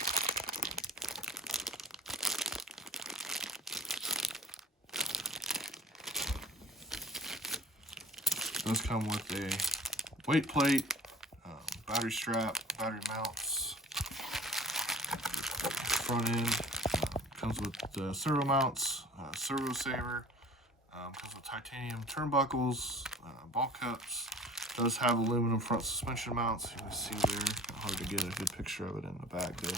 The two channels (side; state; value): both; normal; correlation 0.43